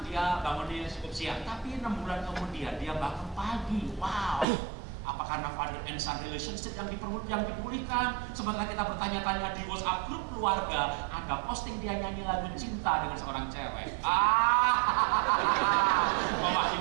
dia bangunnya cukup siang. Tapi 6 bulan kemudian dia bangun pagi. Wow. Apa karena Father and Son relationship yang dipulihkan? Sementara kita bertanya-tanya di WhatsApp grup keluarga, ada posting dia nyanyi lagu cinta dengan seorang cewek.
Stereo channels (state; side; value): drops out; left; at 4.5 s